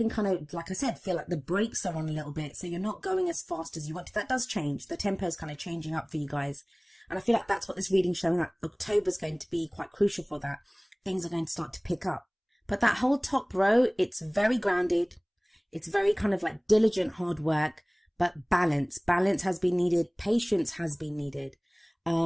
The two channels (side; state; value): both; identical; correlation 1.00